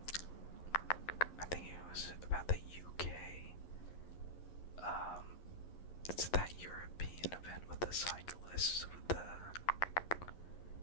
I think it was about the UK. It's that European event with the cyclists, with the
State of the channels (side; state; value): right; late; 11 ms